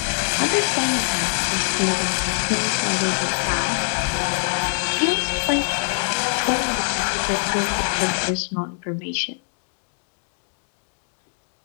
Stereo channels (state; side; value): silent; right; digital silence